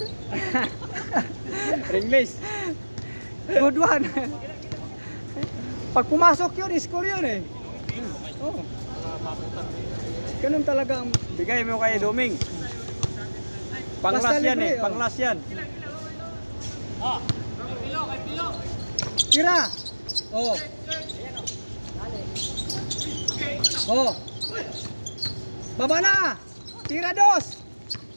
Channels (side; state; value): both; inverted; correlation -1.00